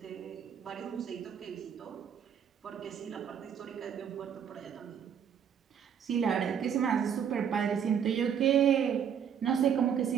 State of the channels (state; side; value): quieter; left; 8.1 dB